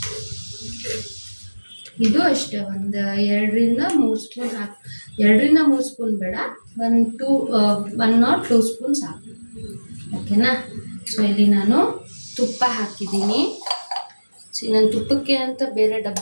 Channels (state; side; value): inverted; both; correlation -1.00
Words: ಇದು ಅಷ್ಟೇ, ಒಂದು 2-3 ಸ್ಪೂನ್ ಹಾಕಿ. 2-3 ಸ್ಪೂನ್ ಬೇಡ, 1 or 2 ಸ್ಪೂನ್ ಸಾಕು, ಓಕೆನಾ. ಸೊ ಇಲ್ಲಿ ನಾನು ತುಪ್ಪ ಹಾಕಿದ್ದೀನಿ. ನಾನು ತುಪ್ಪಕ್ಕೆ ಅಂತ ಬೇರೆ